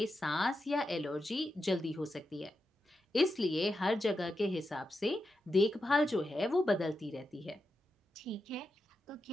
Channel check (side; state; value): both; normal; correlation 0.88